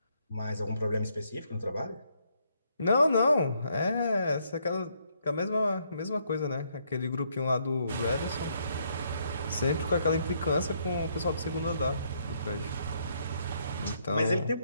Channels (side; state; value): both; inverted; correlation -0.72